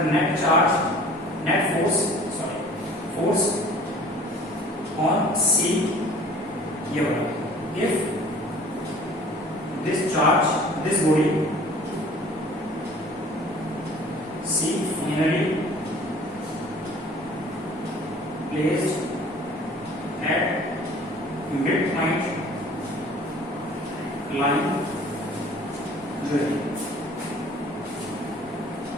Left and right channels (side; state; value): both; normal; correlation 0.49